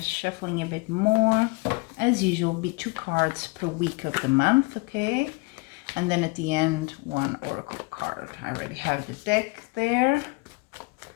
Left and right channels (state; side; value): quieter; right; 27.7 dB